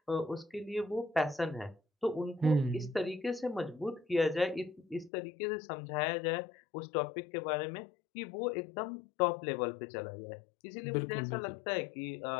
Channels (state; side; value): drops out; right; at 5.1 s